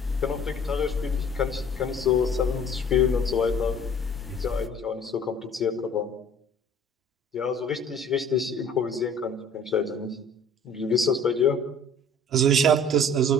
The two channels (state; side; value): normal; both; correlation 0.50